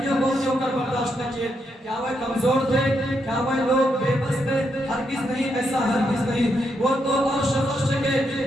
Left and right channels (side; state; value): both; normal; correlation 0.80